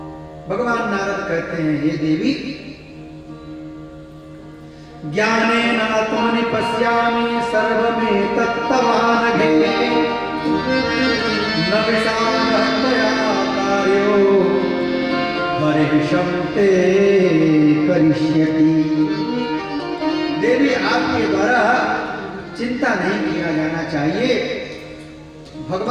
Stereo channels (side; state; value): both; identical; correlation 1.00